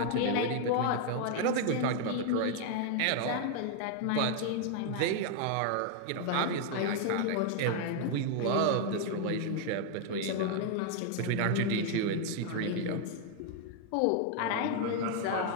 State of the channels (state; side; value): different; both; correlation 0.00